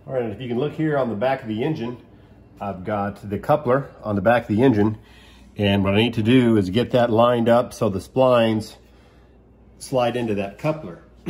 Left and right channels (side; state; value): both; identical; correlation 1.00